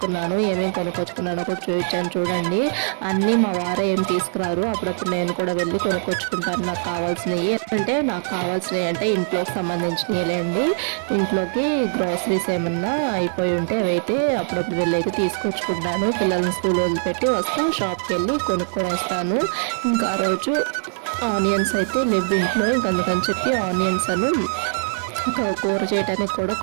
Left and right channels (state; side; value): silent; left; digital silence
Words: ఏమేమి కొనుక్కొచ్చుకున్నానో కూడా చూపించాను చూడండి. అన్నీ మా వారే ఏం తీసుకురారు, అప్పుడప్పుడు నేను కూడా వెళ్ళి కొనుక్కొచ్చుకుంటాను నాకు కావాల్సినవి. నాకు కావాల్సినవి అంటే ఇంట్లోకి సంబంధించినవిలేండి. ఇంట్లోకి గ్రాసరీస్ ఏమన్నా అయిపోయి ఉంటే అవైతే అప్పుడప్పుడు వెళ్ళి అయితే తీసుకొచ్చుకుంటాను. పిల్లల్ని స్కూల్ వదిలిపెట్టి వస్తా, షాప్కి వెళ్ళి కొనుక్కొని వస్తాను. ఇంకా ఆ రోజు ఆనియన్స్ అయితే లేవు ఇంట్లో, ఇంక అందుకని చెప్పి ఆనియన్స్ ఇంకా కూర చేయడానికి కూడా